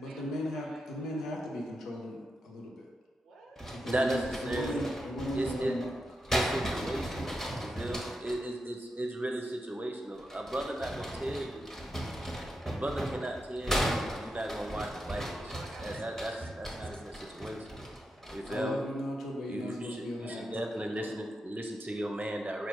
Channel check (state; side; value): normal; both; correlation 0.86